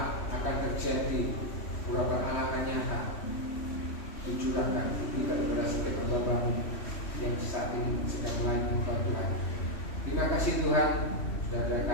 akan terjadi, urapan Allah akan nyata, dicurahkan kepada setiap hamba-Mu yang saat ini sedang melayani Tuhan. Terima kasih Tuhan, saudara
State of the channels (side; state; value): right; late; 3.1 ms